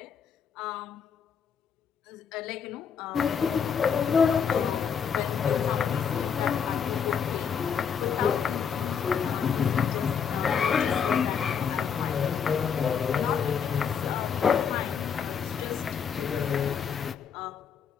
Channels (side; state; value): right; quieter; 7.0 dB